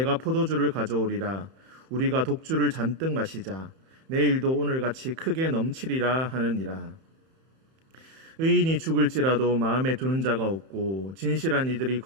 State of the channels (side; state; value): left; late; 31 ms